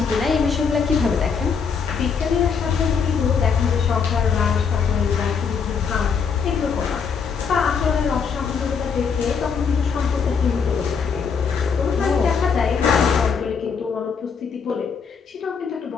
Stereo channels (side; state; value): right; quieter; 6.1 dB